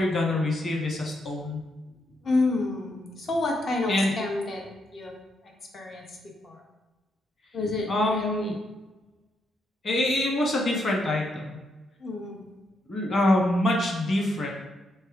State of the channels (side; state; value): both; normal; correlation 0.79